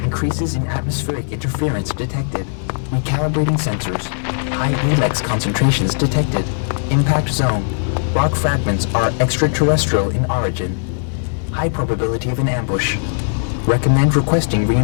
Increases in atmospheric interference detected. Recalibrating sensors. High Elex concentrations detected. Impact zone. Rock fragments are extraterrestrial in origin. High probability of an ambush. Recommend requesting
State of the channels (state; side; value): silent; right; 67 dB below the other